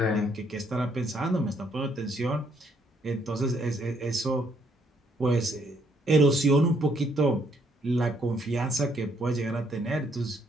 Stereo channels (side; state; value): both; normal; correlation 0.70